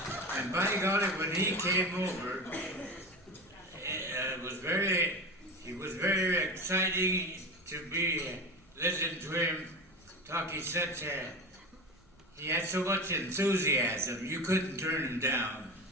and by golly, when he came over, he was very exciting to listen to him talk. He had so much enthusiasm, you couldn't turn him down.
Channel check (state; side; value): normal; both; correlation 0.26